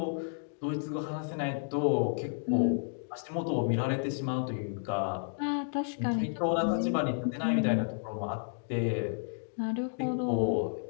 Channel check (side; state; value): right; silent; digital silence